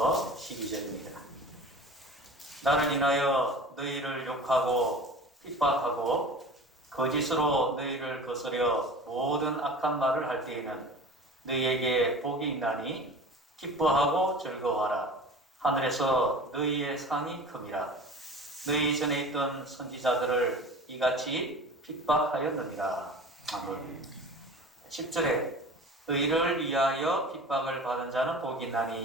12절입니다. 나를 인하여 너희를 욕하고 핍박하고 거짓으로 너희를 거스려 모든 악한 말을 할 때에는 너희에게 복이 있나니 기뻐하고 즐거워하라. 하늘에서 너희의 상이 큼이라. 너희 전에 있던 선지자들을 이같이 핍박하였느니라. 아멘. 10절에 너희를 위하여 핍박을 받은 자는 복이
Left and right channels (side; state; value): both; normal; correlation 0.38